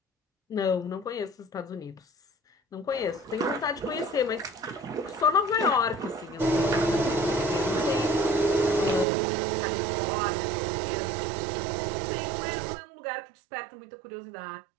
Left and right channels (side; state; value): left; drops out; at 9.1 s